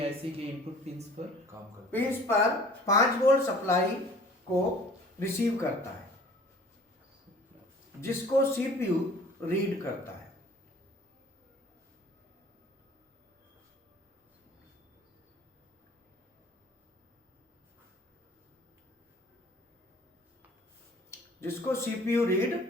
आईसी के इनपुट पिंस पर काम करता पिंस पर 5 वोल्ट सप्लाई को रिसीव करता है, जिसको सीपीयू रीड करता है। जिसको सीपीयू रीड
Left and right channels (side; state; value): both; normal; correlation 0.50